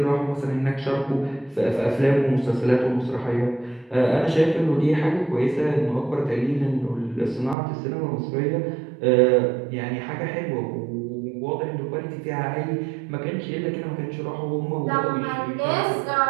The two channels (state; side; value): drops out; left; at 7.6 s